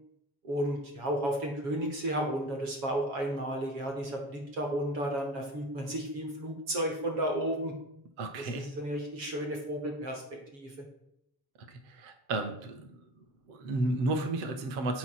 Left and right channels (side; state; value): left; late; 7.2 ms